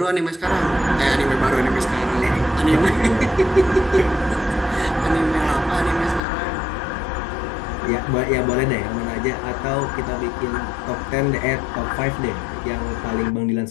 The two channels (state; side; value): drops out; right; at 6.2 s